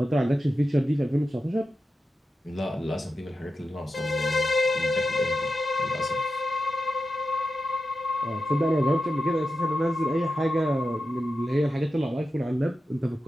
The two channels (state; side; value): normal; both; correlation 0.90